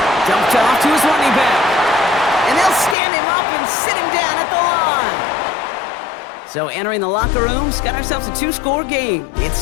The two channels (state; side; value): drops out; right; at 3.0 s